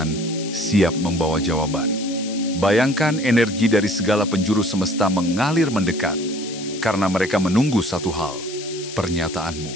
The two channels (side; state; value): left; noise; hiss, 12 dB below the sound